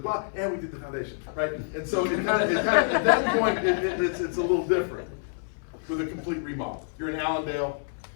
and we did the foundation, right? And so it kind of at that point, it's a little different with a complete remodel. You're in Allendale,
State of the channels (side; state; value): right; silent; 59 dB below the other